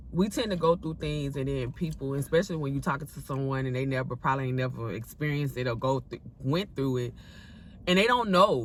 tend to go through things, and then people, especially when you're talking to someone and they probably never experienced it or went through it, and they don't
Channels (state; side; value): identical; both; correlation 1.00